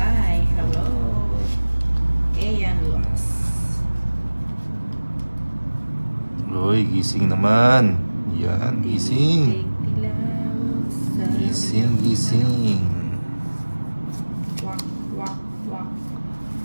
Hello. Ian Lux. Uy, gising naman. Yan, gising. Gising, gising. Wak, wak, wak.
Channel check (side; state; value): both; inverted; correlation -1.00